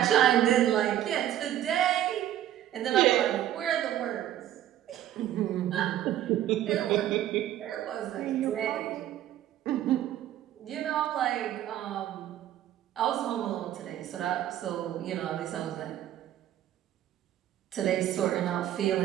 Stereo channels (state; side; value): quieter; left; 12.1 dB